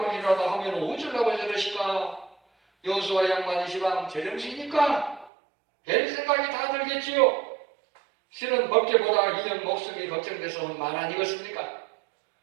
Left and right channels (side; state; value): left; drops out; at 5.3 s